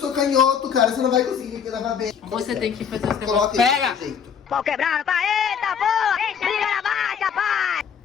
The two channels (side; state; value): right; quieter; 7.3 dB